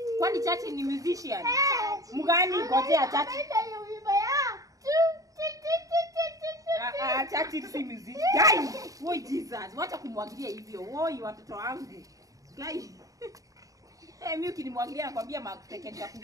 Churchill ni musician. Mgani ngojea Churchill. Churchill si musician. Guys, woi Jesus, wacha kumwagilia hivyo. Woi watoto wangu. Guys. Mimi ukinimwagilia nakwambia matekenya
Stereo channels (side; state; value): left; late; 0.17 ms